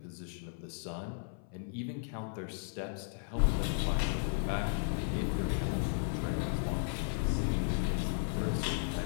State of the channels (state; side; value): silent; right; 54 dB below the other